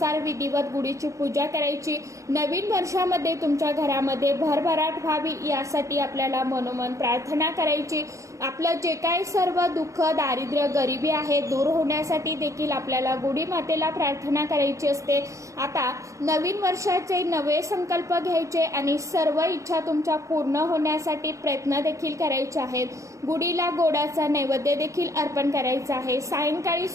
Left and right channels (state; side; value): late; left; 0.15 ms